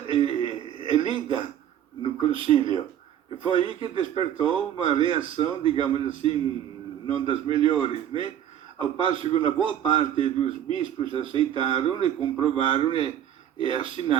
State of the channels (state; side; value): quieter; left; 10.4 dB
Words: é lida no concílio. E foi aí que despertou uma reação, digamos assim, não das melhores, né? Ao passo que uma boa parte dos bispos aceitaram e comprovaram e